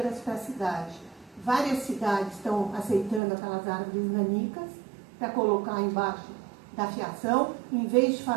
para a cidade. Várias cidades estão aceitando aquelas árvores nanicas para colocar embaixo da fiação, em vez de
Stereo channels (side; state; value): left; drops out; at 3.2 s